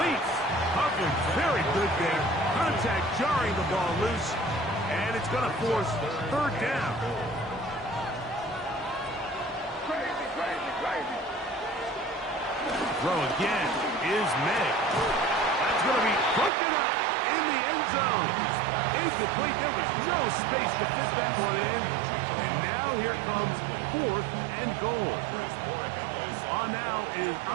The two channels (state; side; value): drops out; left; at 16.5 s